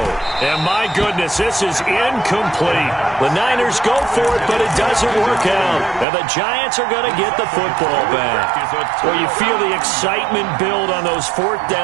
And my goodness, this is incomplete. The Niners go for it, but it doesn't work out. And the Giants are going to get the football back. Well, you feel the excitement build on those 4th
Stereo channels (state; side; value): drops out; left; at 6.1 s